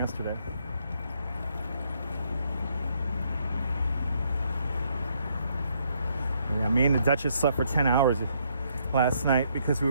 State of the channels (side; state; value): both; inverted; correlation -0.71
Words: Yeah, me and the Duchess slept for 10 hours last night because we